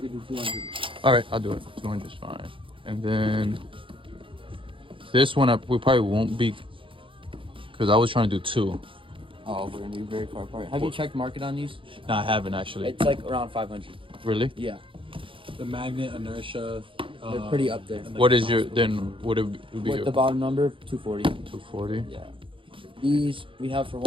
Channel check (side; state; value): left; late; 0.25 ms